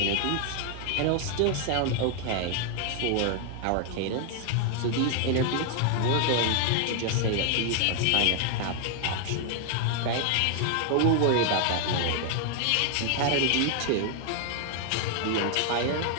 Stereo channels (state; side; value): different; both; correlation 0.00